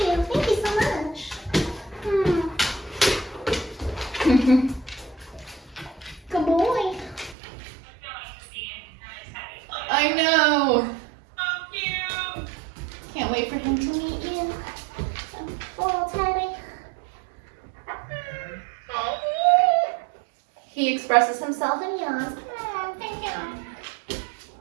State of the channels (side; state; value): left; drops out; at 7.4 s